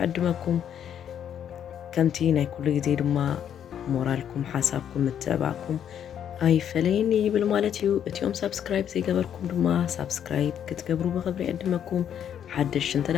ዕድመኩም ከምቲ ናይ ኩሉ ግዜ ድማ ሞራልኩም ሓሳብኩም ምትዕባዕኩም ኣይፈለየኒ ይብል ማለት እዩ እቲኦም ሳብስክራይብ ዘይገበርኩም ድማ ሳብስክራይብ ክትገብሩ ብኽብሪ ዕድመኩም ሓድሽ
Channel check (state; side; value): quieter; right; 9.3 dB